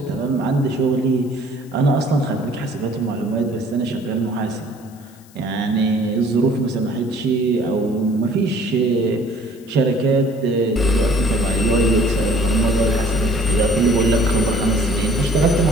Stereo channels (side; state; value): left; noise; hiss, 27 dB below the sound